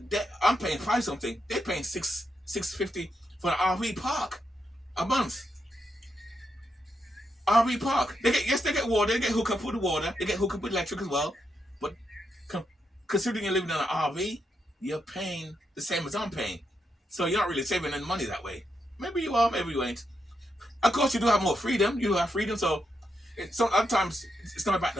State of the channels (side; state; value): both; normal; correlation 0.82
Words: I'm paying 5 something. They're paying $650 for an RV park a month. RV park. They get water. They get hooked up with the water. They get hooked up with electric as well. But considering you're living in an RV, you're paying the same as I'm paying. So you're not really saving any money that way. Maybe you are, maybe you ain't. Of course, you do have more freedom. You do have freedom. So sometimes it's not about